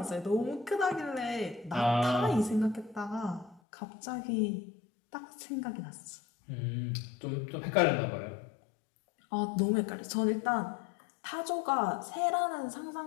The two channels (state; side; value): drops out; right; at 3.6 s